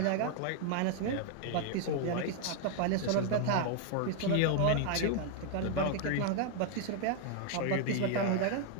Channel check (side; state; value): both; different; correlation 0.00